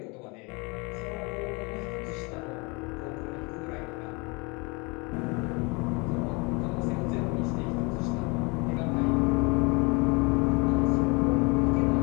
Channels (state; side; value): quieter; right; 29.3 dB